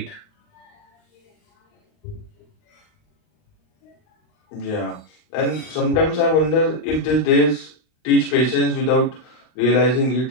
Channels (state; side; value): late; right; 39 ms